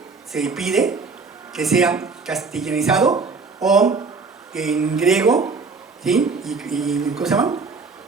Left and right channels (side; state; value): left; quieter; 4.5 dB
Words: se pide que sea castellanizado o en griego, ¿sí? ¿Cómo se llama?